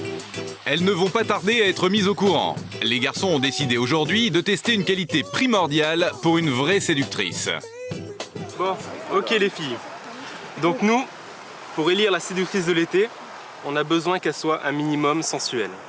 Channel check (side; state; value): both; identical; correlation 1.00